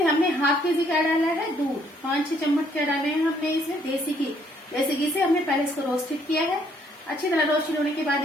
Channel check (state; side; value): normal; both; correlation 0.67